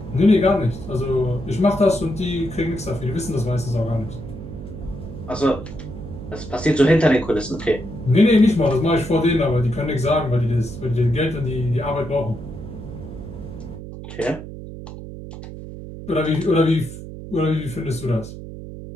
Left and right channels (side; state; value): right; noise; hum, 11 dB below the sound